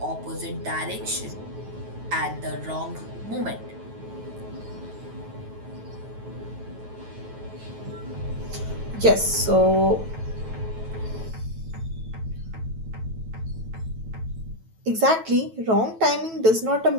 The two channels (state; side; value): late; left; 9.2 ms